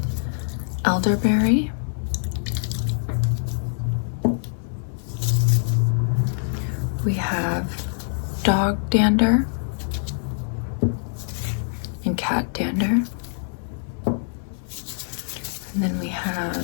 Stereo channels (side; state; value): right; silent; digital silence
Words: elderberry. We have dog dander and cat dander. And then we